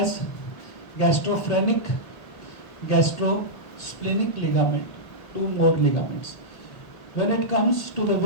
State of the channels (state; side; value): late; right; 1.3 ms